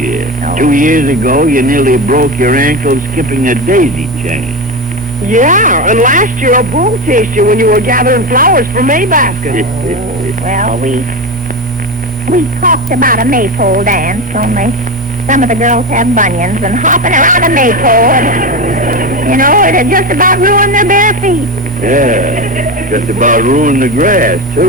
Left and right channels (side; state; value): both; normal; correlation 0.19